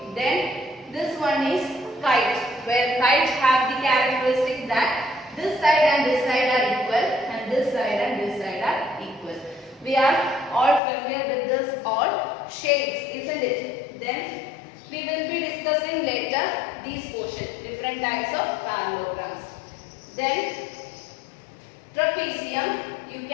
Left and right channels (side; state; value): right; drops out; at 10.8 s